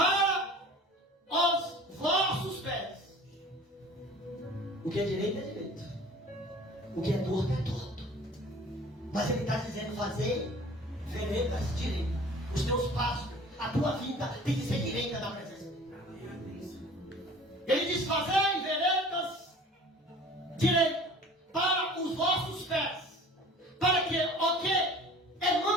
os vossos pés. O que é direito é direito. O que é torto é torto. Mas ele está dizendo: fazer veredas direitas. Os teus passos, a tua vida tem que ser direita na presença de Deus. Ele diz: fazei veredas direitas para os vossos pés, para que o que é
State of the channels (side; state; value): both; normal; correlation 0.45